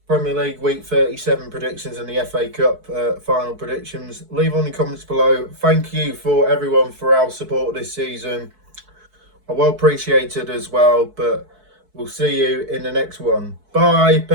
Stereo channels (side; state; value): left; late; 4.6 ms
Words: Premier League Week 37 predictions and the FA Cup final predictions. Leave on the comments below. Thank you for everyone for our support this season. I well appreciated as well, but we'll see you in the next one. Bye.